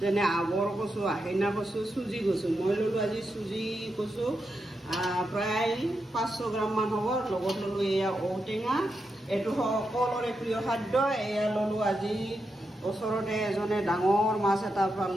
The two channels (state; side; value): normal; both; correlation 0.86